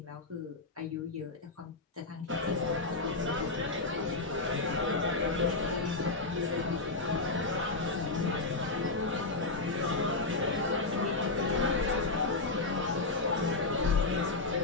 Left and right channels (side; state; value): right; quieter; 3.4 dB